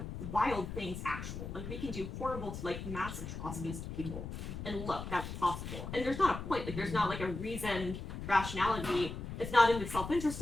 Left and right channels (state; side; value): noise; left; rumble, 7 dB below the sound